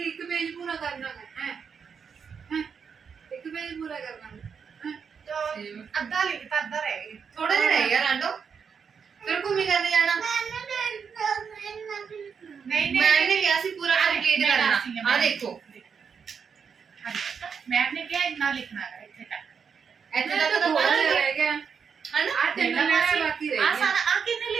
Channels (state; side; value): quieter; left; 6.4 dB